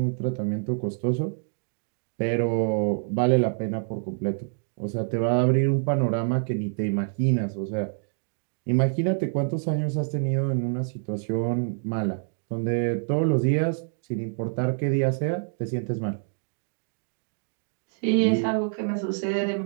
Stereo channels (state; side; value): silent; left; digital silence